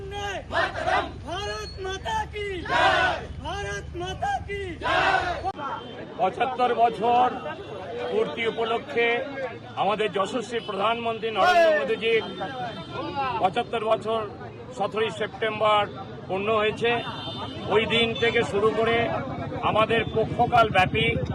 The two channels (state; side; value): identical; both; correlation 1.00